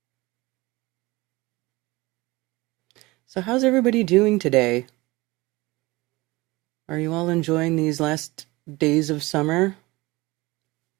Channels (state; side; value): quieter; left; 21.7 dB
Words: So how's everybody doing today? Are you all enjoying these last days of summer?